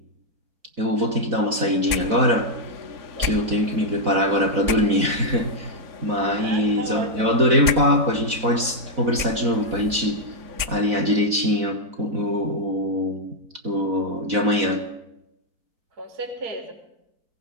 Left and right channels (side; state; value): left; late; 4.1 ms